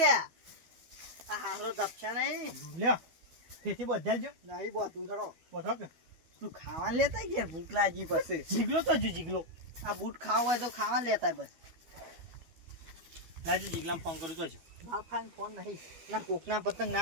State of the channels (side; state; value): left; late; 12 ms